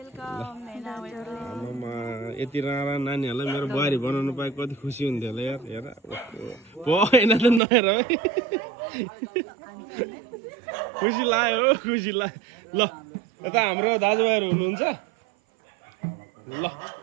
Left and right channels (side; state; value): left; drops out; at 7.6 s